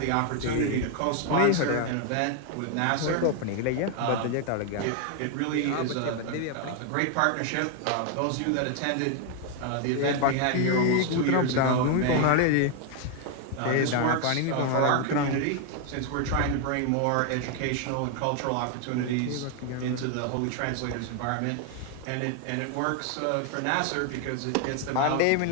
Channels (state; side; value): different; both; correlation 0.00